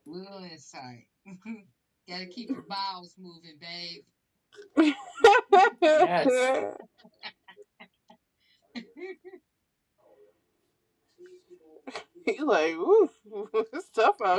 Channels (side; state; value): both; identical; correlation 1.00